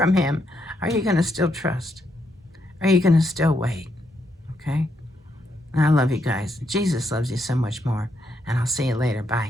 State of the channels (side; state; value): both; normal; correlation 0.78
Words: him, are you going to still trust? Are you going to still wait? Okay? And I love you guys. Jesus loves you so much more. And I'll see you later.